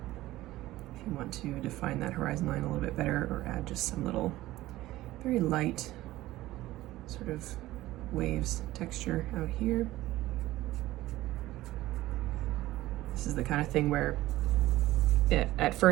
If you want to define that horizon line a little bit better, or add just some little very light sort of waves texture out here. This is the kind of thing where at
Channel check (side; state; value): left; quieter; 16.5 dB